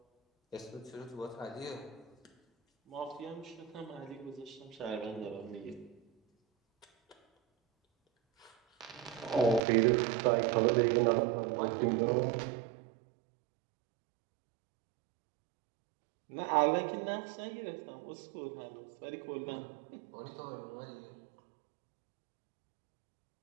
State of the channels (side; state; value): left; drops out; at 9.6 s